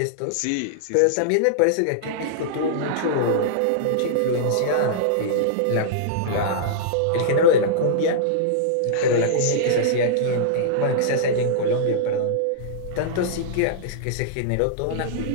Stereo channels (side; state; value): both; different; correlation -0.02